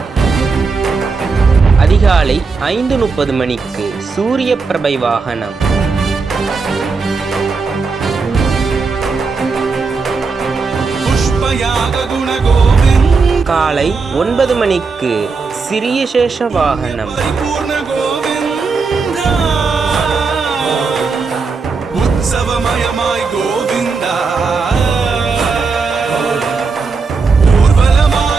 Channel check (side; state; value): left; quieter; 4.6 dB